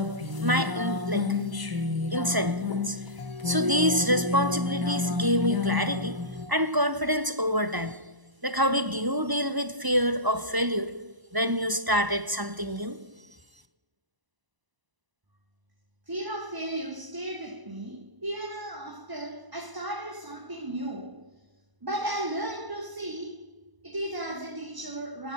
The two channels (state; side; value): late; left; 1.0 ms